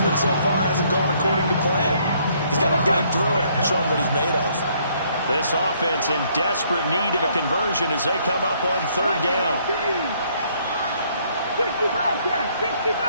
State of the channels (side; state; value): both; inverted; correlation -0.66